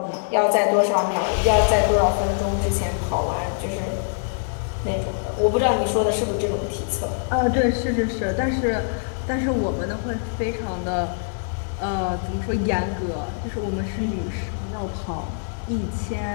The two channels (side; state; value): right; silent; 63 dB below the other